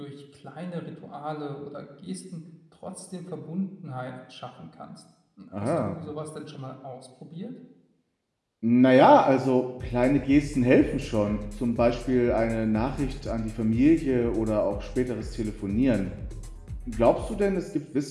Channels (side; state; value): both; identical; correlation 1.00